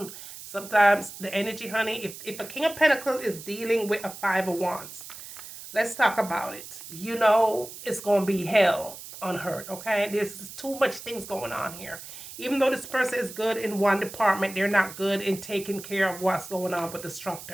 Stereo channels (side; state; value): right; noise; hiss, 13 dB below the sound